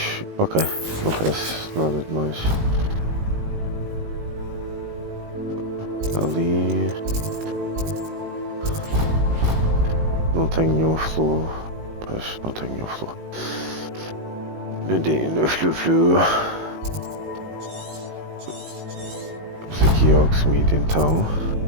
Ok, não parece nada demais. Ali não tenho nenhum fluo. Pois não tenho nenhum fluo. No flu. Vamos aqui ao Hogsmeade então.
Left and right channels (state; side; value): late; left; 18 ms